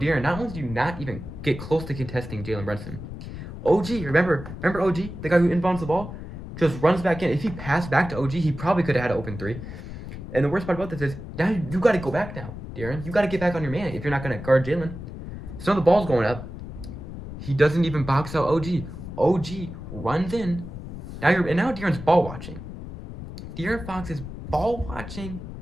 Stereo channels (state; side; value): noise; left; rumble, 10 dB below the sound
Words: not only do you not even get close to contesting Jalen Brunson, OG, remember OG, the guy who inbounds the ball, just runs back in. If he passed back to OG, he probably could have had an open 3. And the worst part about this is, now you got to go back now, De'Aaron. You got to get back on your man if you're not going to guard Jalen. So the ball's going up. He doesn't even box out OG. OG runs in. Now De'Aaron's ball watching. De'Aaron Fox is ball watching